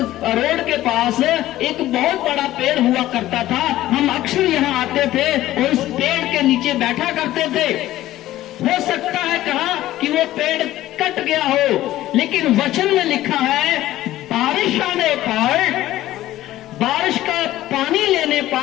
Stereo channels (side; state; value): right; quieter; 14.8 dB